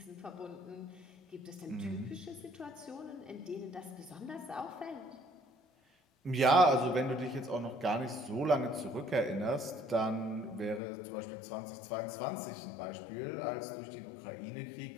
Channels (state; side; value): drops out; right; at 10.8 s